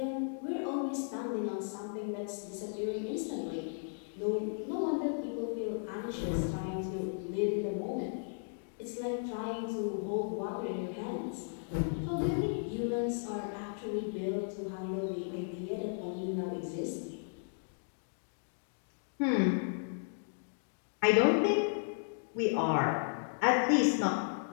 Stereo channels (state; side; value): silent; right; digital silence